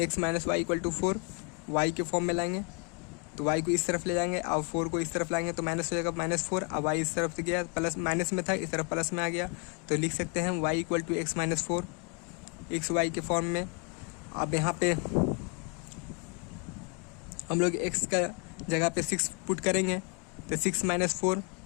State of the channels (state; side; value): quieter; right; 36.6 dB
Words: minus Y equal to 4 Y के फॉर्म में लाएंगे, तो y को इस तरफ ले जाएंगे और 4 को इस तरफ लाएंगे, तो माइनस हो जाएगा -4। अब y इस तरफ से गया, प्लस माइनस में था, इस तरफ प्लस में आ गया, तो लिख सकते हैं y equal to x minus 4 X Y के फॉर्म में। अब यहाँ पे हम लोग x का जगह पे 6 पुट करेंगे तो 6 - 4,